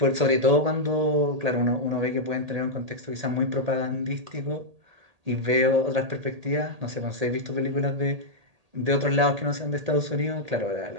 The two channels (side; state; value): left; late; 1.8 ms